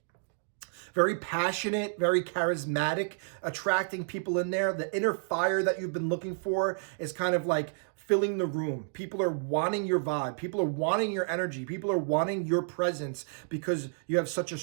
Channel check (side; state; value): left; silent; digital silence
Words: Very passionate, very charismatic, attracting people in there. The inner fire that you've been looking for is kind of like filling the room. People are wanting your vibe. People are wanting your energy. People are wanting your presence because you have such a